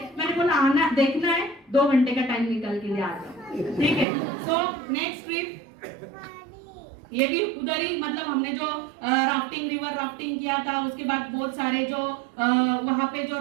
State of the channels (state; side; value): drops out; left; at 4.0 s